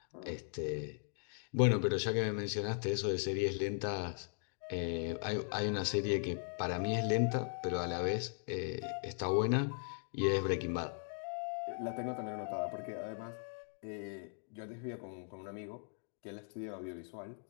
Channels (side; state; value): right; silent; digital silence